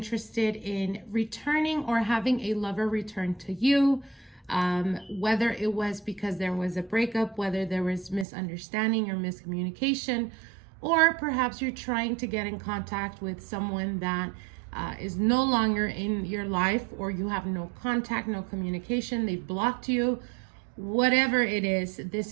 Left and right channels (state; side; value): drops out; left; at 8.2 s